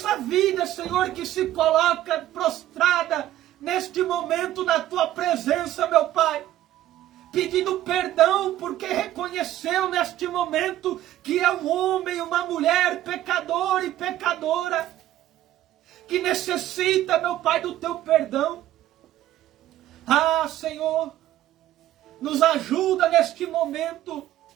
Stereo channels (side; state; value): left; quieter; 13.5 dB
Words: vida, Senhor, que se coloca prostrada neste momento na Tua presença, meu Pai. Pedindo perdão porque reconheceu neste momento que é um homem, uma mulher pecador e pecadora. Que necessita, meu Pai, do Teu perdão. Ah, Senhor, nos ajuda neste momento